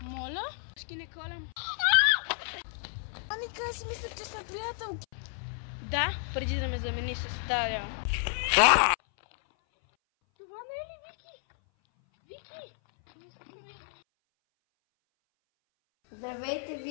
Моля? Ще не колям. Аника, аз си мислех, че сме приятелки. Да, преди да ме замени с Даря. Това не е ли Вики? Вики! Здравейте,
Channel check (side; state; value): right; silent; 57 dB below the other